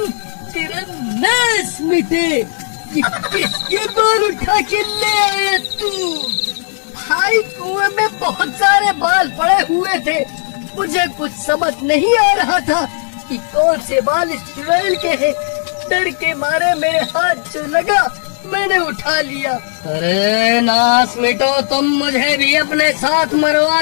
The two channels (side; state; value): right; silent; digital silence